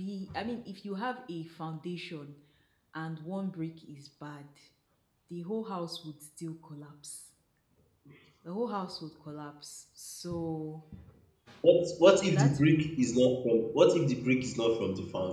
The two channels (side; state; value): both; identical; correlation 1.00